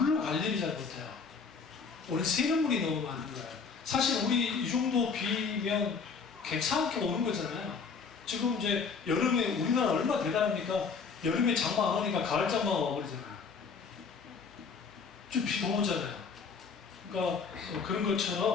관리를 잘 못해요. 우리 새는 물이 너무 많은 거예요. 사실 우리 이 정도 비면 괜찮게 오는 거잖아요. 지금 이제 여름에 우리나라 얼마나 대단합니까? 여름에 장마 안 오니까 가을 장마가 와버리잖아요. 좀 비 너무 오잖아요. 그러니까 그런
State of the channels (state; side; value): quieter; right; 5.3 dB